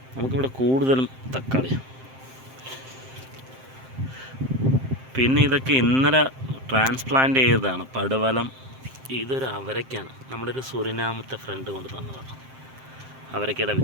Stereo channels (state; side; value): late; left; 7.6 ms